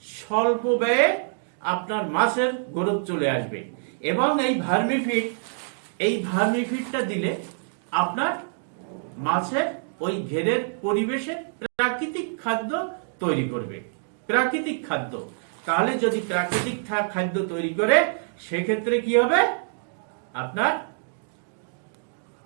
স্বল্প ব্যয়ে আপনার মাছের গ্রোথ চলে আসবে। এবং এই ভার্মিফিডটা দিলে আপনার মাছের ওই ঘেরের পরিবেশে প্রাকৃতিক খাদ্য তৈরি করবে। প্রাকৃতিক খাদ্য, তাহলে যদি প্রাকৃতিক খাদ্য তৈরি করে সেক্ষেত্রে কি হবে, আপনার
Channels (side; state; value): left; silent; digital silence